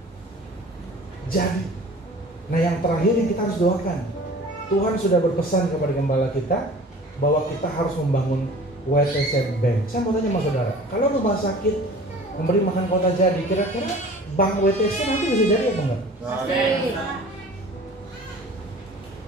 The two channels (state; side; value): normal; both; correlation 0.44